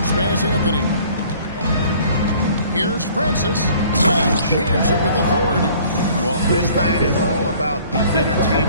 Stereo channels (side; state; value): both; inverted; correlation -0.54